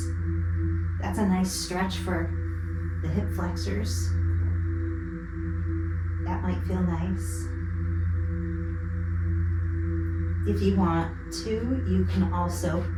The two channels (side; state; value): both; identical; correlation 1.00